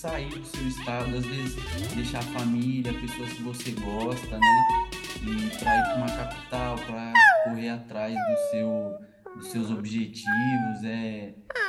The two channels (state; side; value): identical; both; correlation 1.00